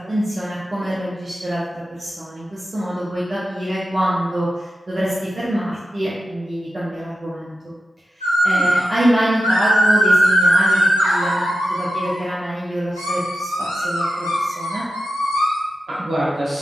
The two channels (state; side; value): normal; both; correlation 0.90